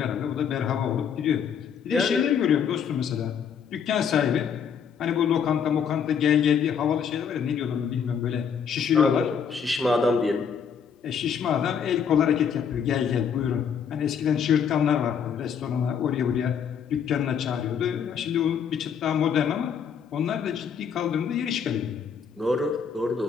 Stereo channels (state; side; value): quieter; right; 7.2 dB